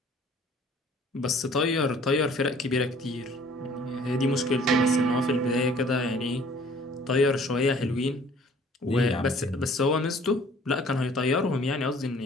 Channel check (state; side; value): normal; both; correlation 0.54